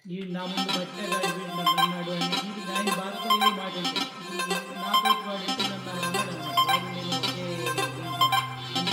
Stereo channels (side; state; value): both; identical; correlation 1.00